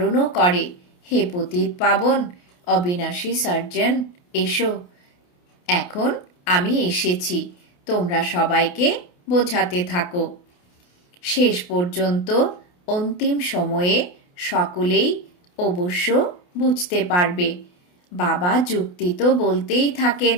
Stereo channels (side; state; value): right; late; 28 ms